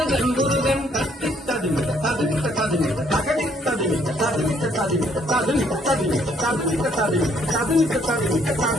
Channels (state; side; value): normal; both; correlation 0.67